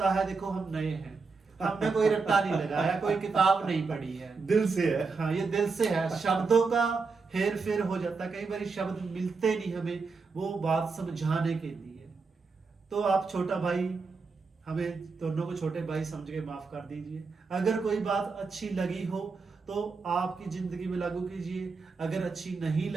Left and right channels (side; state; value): left; quieter; 4.5 dB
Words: है देखो हम नए हैं, हमने कोई रट्टा नहीं लगाया, कोई किताब नहीं पढ़ी है। दिल से है। हाँ, ये दिल से है। शब्दों का हेर फेर हो जाता है, कई बार शब्द मिलते नहीं हमें वो बात समझाने के लिए। तो आप छोटा भाई, हमें दोनों को छोटे भाई समझ के माफ कर दीजिए। अगर कोई बात अच्छी लगी हो तो आपकी जिंदगी में लागू कीजिए, अगर अच्छी नहीं